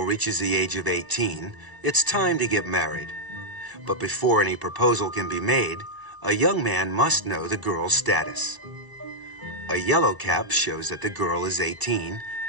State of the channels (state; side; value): late; left; 1.0 ms